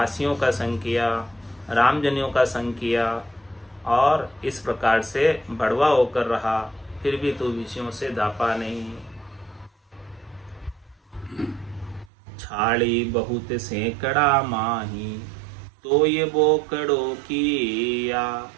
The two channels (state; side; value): drops out; left; at 12.1 s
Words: का संग किया, रामजनियों का संग किया, और इस प्रकार से भड़वा होकर रहा, फिर भी तू विषयों से धापा नहीं। छाड़ी बहुत सैकड़ा माही, तो ये बोकड़ो किया,